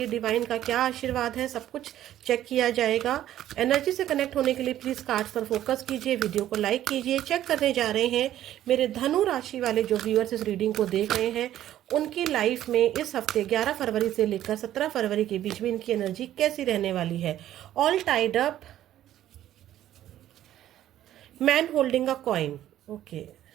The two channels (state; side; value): quieter; left; 12.5 dB